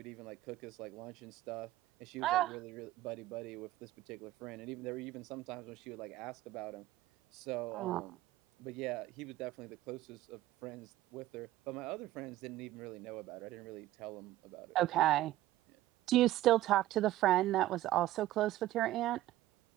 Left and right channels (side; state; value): left; quieter; 15.3 dB